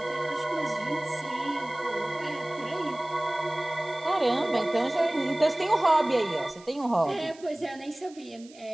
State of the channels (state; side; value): noise; right; hiss, 23 dB below the sound